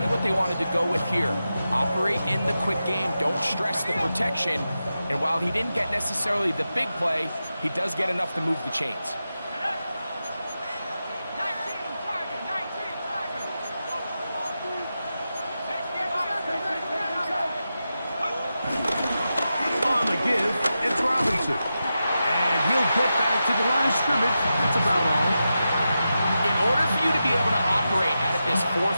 what they wanted to go with here. Operate in the quick game, don't stress the protection, and while he didn't get necessarily the big play, he does get enough to move the chains. On the give, it's Robinson. And he'll get back to the line of scrimmage. That's about all. In order for you to be able to operate out of this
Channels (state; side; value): inverted; both; correlation -0.90